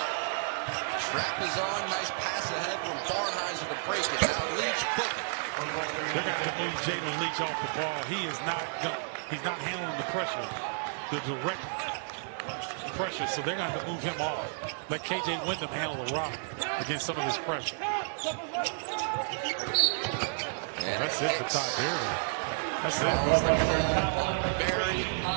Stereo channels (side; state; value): left; silent; digital silence